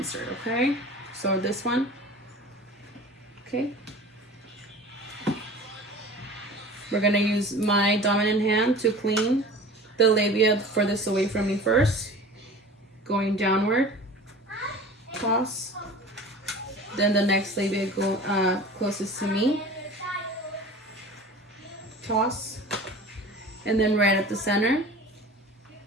Okay, so this one. Okay. We're gonna use my dominant hand to clean the labia furthest away from me first. Going downward, toss. Then the next labia go closest to me, toss. And then right at the center,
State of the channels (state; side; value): normal; both; correlation 0.39